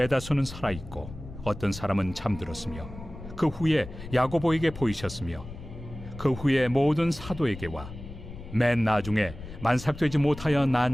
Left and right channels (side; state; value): left; noise; rumble, 13 dB below the sound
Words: 살아있고 어떤 사람은 잠들었으며 그 후에 야고보에게 보이셨으며 그 후에 모든 사도에게와 맨 나중에 만삭되지 못하여